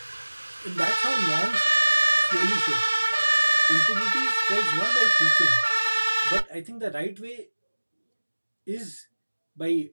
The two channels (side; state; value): both; inverted; correlation -1.00